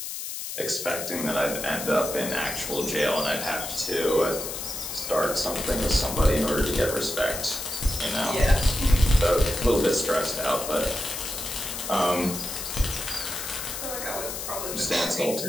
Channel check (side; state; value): left; noise; hiss, 6 dB below the sound